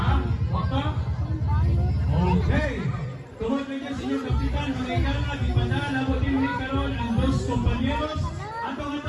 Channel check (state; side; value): identical; both; correlation 1.00